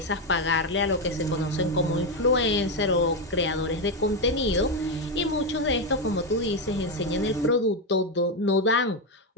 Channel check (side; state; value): both; normal; correlation 0.08